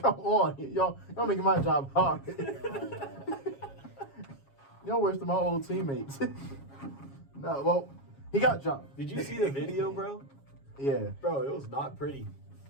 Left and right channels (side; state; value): right; late; 7.3 ms